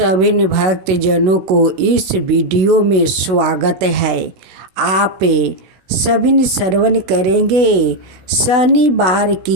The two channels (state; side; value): late; left; 16 ms